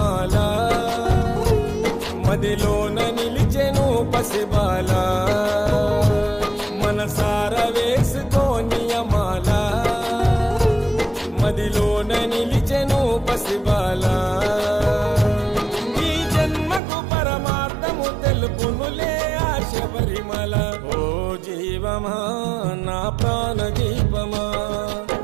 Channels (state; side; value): drops out; left; at 16.8 s